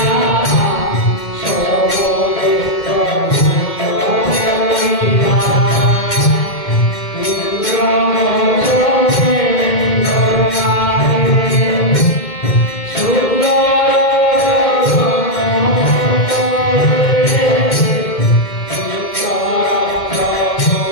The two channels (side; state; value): right; late; 2.1 ms